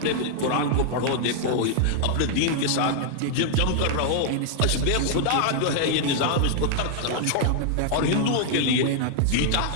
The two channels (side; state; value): both; different; correlation 0.00